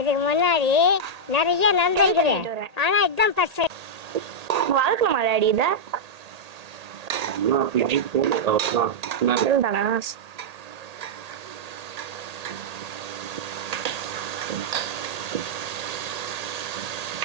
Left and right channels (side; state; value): left; late; 1.8 ms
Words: முன்னாடி நிறைய நடந்திருக்குது, ஆனா இதுதான் ஃபர்ஸ்ட். வளர்க்கணுமா டாடி இதை? தானா